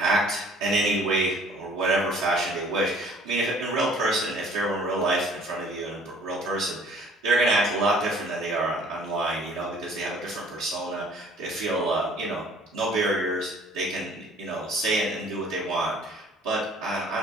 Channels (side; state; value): both; normal; correlation 0.54